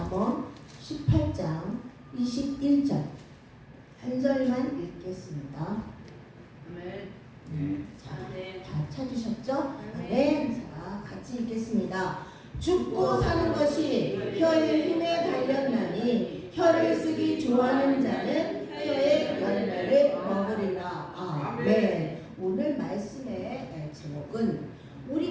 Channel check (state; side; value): identical; both; correlation 1.00